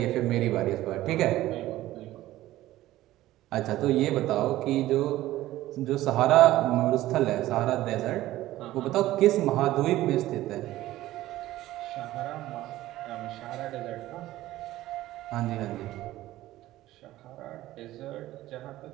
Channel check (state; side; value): quieter; left; 15.5 dB